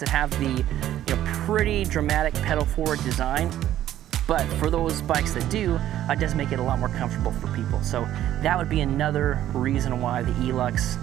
that have the, pretty dramatic pedal forward design, but for those bikes that do, it does make it a lot more comfortable for people. So that would be another reason why the ELUX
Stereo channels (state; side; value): quieter; left; 12.4 dB